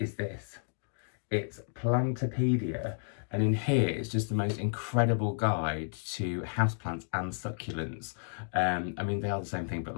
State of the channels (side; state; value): right; silent; digital silence